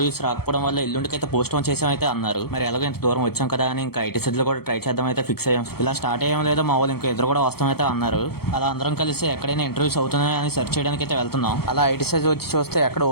రాకపోవడం వల్ల ఎల్లుండికైతే పోస్ట్ పోన్ చేసాం అయితే అన్నారు. మరి ఎలాగో ఇంత దూరం వచ్చాం కదా అని ఇంకా ఐటీ సిటీలో కూడా ట్రై చేద్దాం అయితే ఫిక్స్ అయ్యాం. ఇలా స్టార్ట్ అయ్యాం లేదో మా వాళ్ళు ఇంకా ఇద్దరు కూడా వస్తాం అయితే అన్నారు. అలా అందరం కలిసి ఎక్కడైనా ఇంటర్వ్యూస్ అవుతున్నాయని అని సెర్చ్ చేయడానికి అయితే వెళ్తున్నాం. అలా ఐటీ సైజ్ వచ్చి చూస్తే ఎక్కడ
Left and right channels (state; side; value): late; right; 0.95 ms